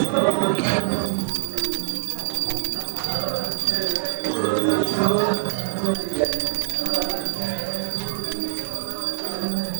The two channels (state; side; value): silent; left; digital silence